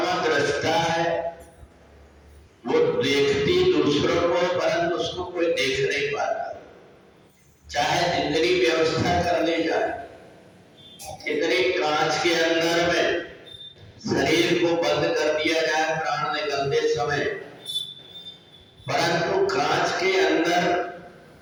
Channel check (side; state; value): both; identical; correlation 1.00